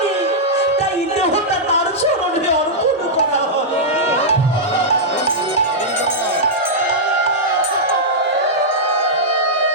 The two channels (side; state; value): both; normal; correlation -0.09